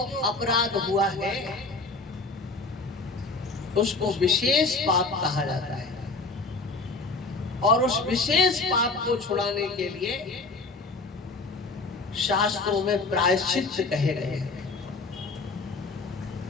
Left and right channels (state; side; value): quieter; right; 3.6 dB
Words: अपराध हुआ है, उसको विशेष पाप कहा जाता है, और उस विशेष पाप को छुड़ाने के लिए शास्त्रों में प्रायश्चित कहे गए हैं,